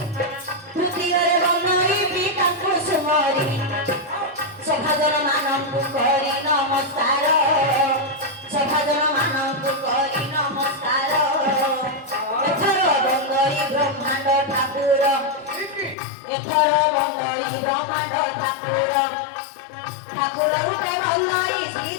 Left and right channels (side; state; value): right; drops out; at 16.0 s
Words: তৃতীয়রে বন্দই পিতাଙ୍କୁ সুমরি সভাজন ମାନଙ୍କୁ କରି ନମସ୍କାର ସଭାଜନ ମାନଙ୍କୁ କରି ନମସ୍କାର ଏଥର ବନ୍ଦଇ ବ୍ରହ୍ମାଣ୍ଡ ଠାକୁର ଏଥର ବନ୍ଦଇ ବ୍ରହ୍ମାଣ୍ଡ ଠାକୁର ଠାକୁର ରୂପେ ବନ୍ଦଇ ଶ୍ରୀ